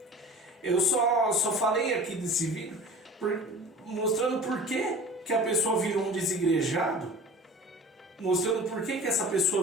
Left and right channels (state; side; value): normal; both; correlation 0.39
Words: Eu só falei aqui desse vídeo mostrando por que a pessoa virou um desigrejado, mostrando por que essa